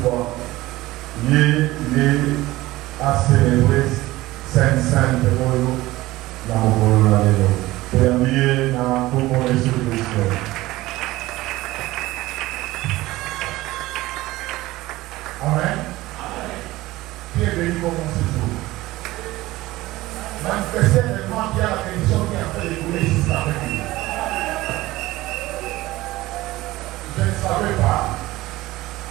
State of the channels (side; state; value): left; quieter; 18.1 dB